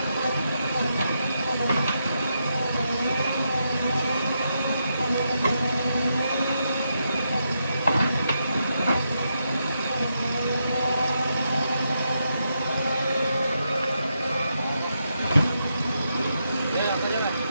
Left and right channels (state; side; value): inverted; both; correlation -0.83